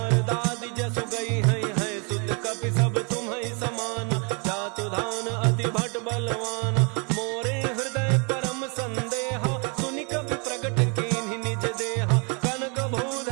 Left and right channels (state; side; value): quieter; left; 34.4 dB